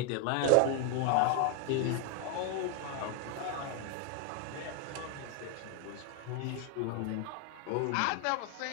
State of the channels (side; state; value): both; different; correlation 0.01